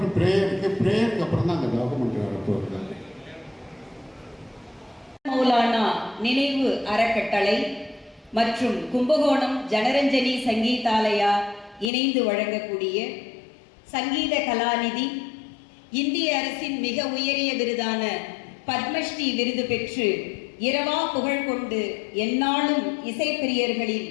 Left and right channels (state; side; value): drops out; right; at 11.9 s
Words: ப்ரேயருக்கு அப்புறம் தான் அந்த டாக்குமெண்ட் வரப்போகுது. மௌலானா நினைவு அறக்கட்டளை மற்றும் கும்பகோணம் ஜனரஞ்சனி சங்கீதாலயா இணைந்து வழங்கக்கூடிய சங்கீத கலாநிதி, இந்திய அரசின் மிக உயரிய விருதான பத்மஸ்ரீ விருது பெற்று இரவா புகழ் கொண்டு எந்நாளும் இசைப்பிரியர்களின்